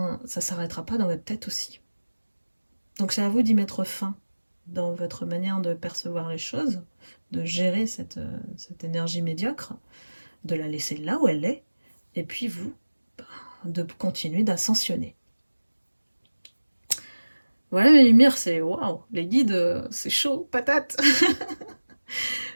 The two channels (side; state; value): both; inverted; correlation -1.00